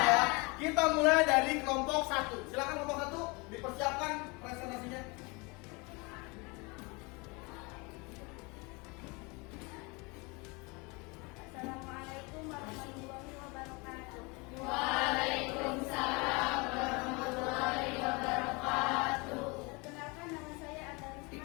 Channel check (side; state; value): right; quieter; 28.0 dB